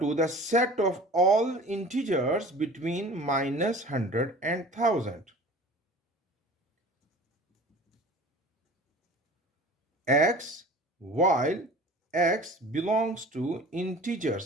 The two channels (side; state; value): both; normal; correlation 0.41